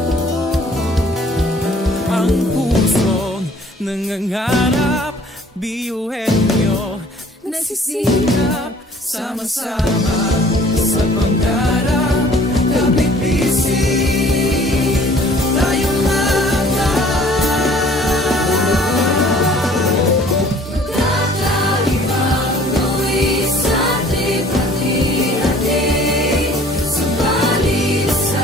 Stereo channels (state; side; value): normal; both; correlation 0.54